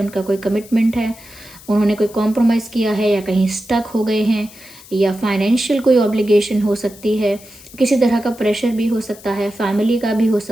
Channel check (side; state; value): left; noise; hiss, 20 dB below the sound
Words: कोई कमिटमेंट है, उन्होंने कोई कॉम्प्रोमाइज़ किया है या कहीं स्टक हो गए हैं, या फाइनेंशियल कोई ऑब्लिगेशन हो सकती है, किसी तरह का प्रेशर भी हो सकता है, फैमिली का भी हो